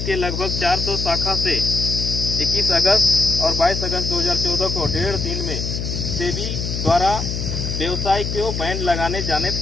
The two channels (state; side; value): noise; left; hum, 3 dB below the sound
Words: के लगभग 400 शाखा से 21 अगस्त और 22 अगस्त 2014 को 1.5 दिन में सेबी द्वारा व्यवसाय को बैन लगाए जाने